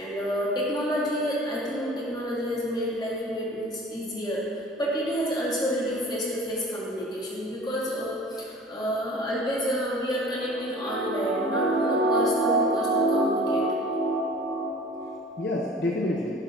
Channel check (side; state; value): both; normal; correlation 0.45